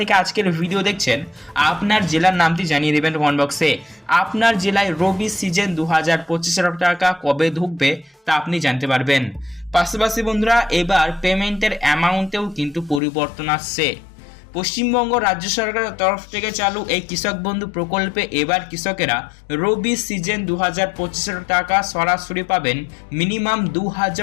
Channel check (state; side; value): drops out; right; at 13.0 s